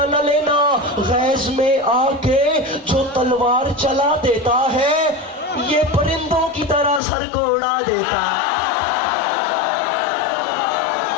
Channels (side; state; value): right; drops out; at 7.0 s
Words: न लेना। गैज में आके जो तलवार चला देता है, ये परिंदों की तरह सर को उड़ा देता।